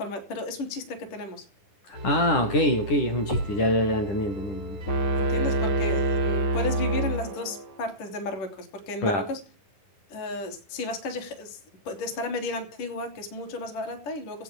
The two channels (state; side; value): late; right; 10 ms